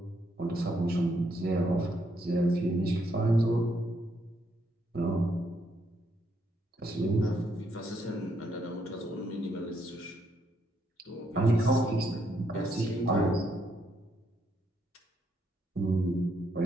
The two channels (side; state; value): both; normal; correlation 0.75